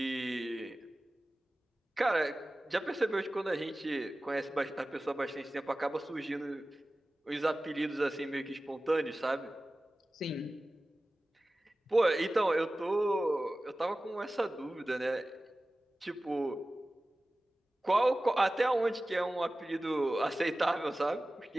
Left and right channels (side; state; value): both; normal; correlation 0.96